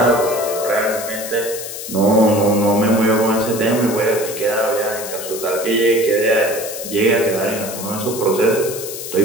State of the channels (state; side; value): noise; left; hiss, 9 dB below the sound